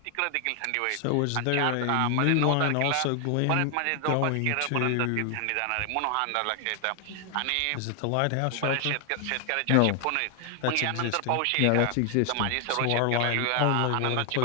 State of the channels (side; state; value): both; different; correlation 0.00